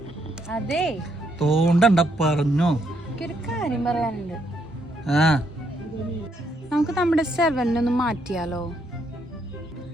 അതെ തോണ്ടണ്ട പറഞ്ഞോ. ഒരു കാര്യം പറയാനുണ്ട്. ആ നമുക്ക് നമ്മുടെ 7 ഒന്ന് മാറ്റിയാലോ?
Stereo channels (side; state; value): both; normal; correlation 0.74